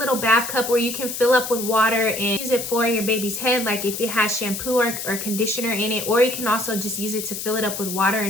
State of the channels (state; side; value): noise; left; hiss, 6 dB below the sound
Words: bath cup where you can fill up with water and use it for your baby's head, like if it has shampoo or conditioner in it, or you can also just use it to fill it up with water